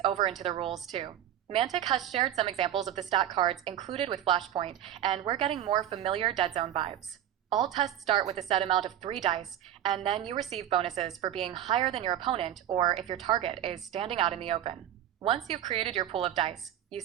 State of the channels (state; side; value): quieter; left; 11.2 dB